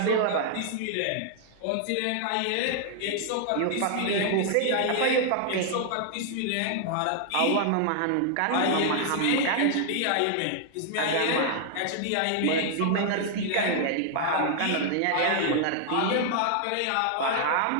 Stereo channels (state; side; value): different; both; correlation 0.00